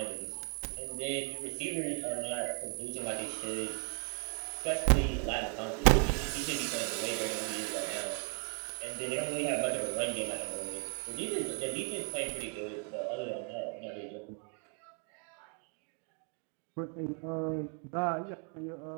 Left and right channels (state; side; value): quieter; left; 39.6 dB